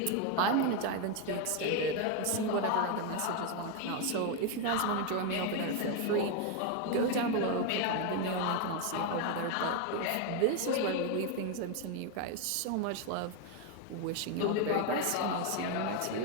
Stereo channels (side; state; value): both; different; correlation 0.02